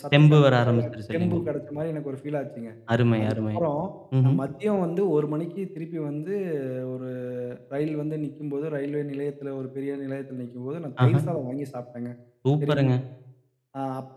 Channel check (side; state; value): both; identical; correlation 1.00